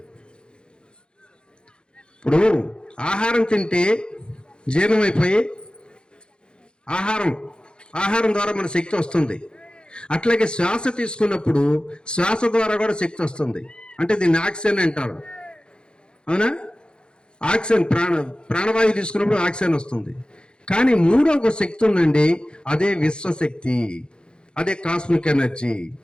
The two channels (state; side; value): late; right; 0.051 ms